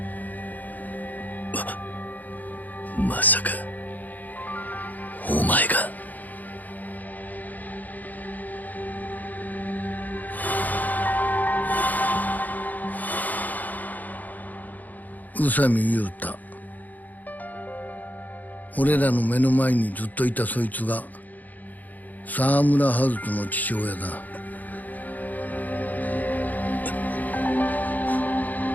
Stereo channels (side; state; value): right; late; 0.082 ms